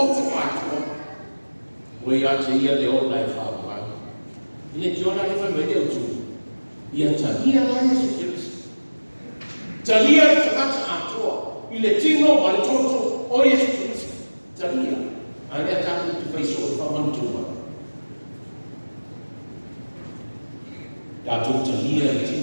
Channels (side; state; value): both; inverted; correlation -1.00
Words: matu. We ya te ia le ola e fa ma. Ile kiona le fa mede utu. Ia talia la Yesu ke biso. Talia takata atua. Ile tino wale toto o Yesu ke biso. Talia. Ale atatu tu biso fa mantua. Dato talia le